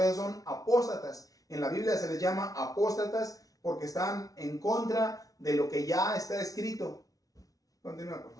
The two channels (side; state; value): right; late; 0.18 ms